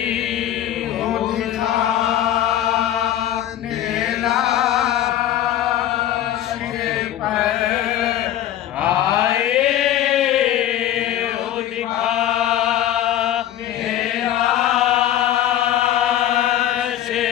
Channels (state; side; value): quieter; right; 11.9 dB